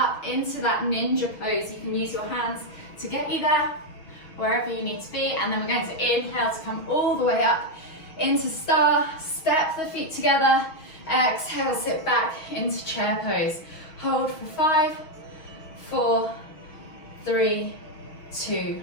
into that ninja pose. You can use your hands to get you there, wherever you need to be, and then we're going to inhale to come all the way up into star, step the feet together, exhale, sit back into chair pose. Hold for 5, 4, 3, 2,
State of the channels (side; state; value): right; late; 6.3 ms